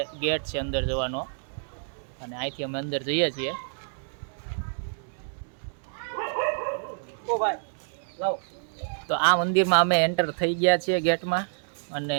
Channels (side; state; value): left; silent; digital silence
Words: ગેટ છે અંદર જવાનો, અને અહીંથી અમે અંદર જઈએ છીએ। તો આ મંદિરમાં અમે એન્ટર થઈ ગયા છીએ ગેટમાં, અને